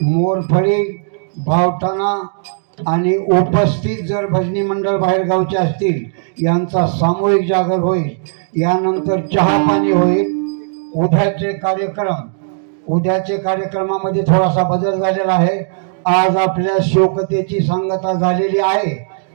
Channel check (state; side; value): silent; left; digital silence